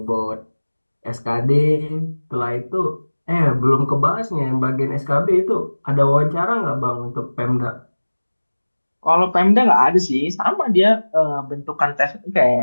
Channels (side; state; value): both; inverted; correlation -1.00